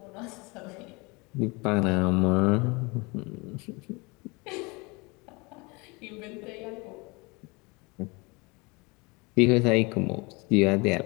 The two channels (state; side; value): quieter; right; 27.0 dB